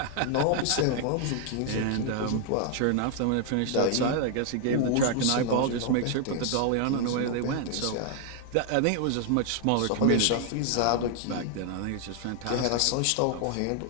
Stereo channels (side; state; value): both; different; correlation 0.00